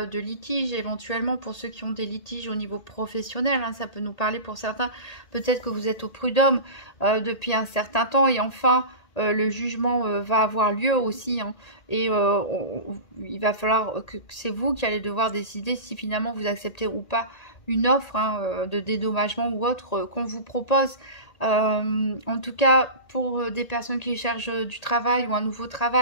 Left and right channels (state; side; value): late; right; 1.8 ms